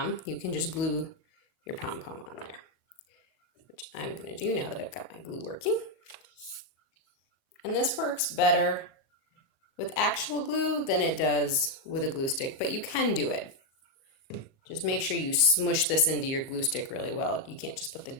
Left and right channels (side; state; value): right; late; 38 ms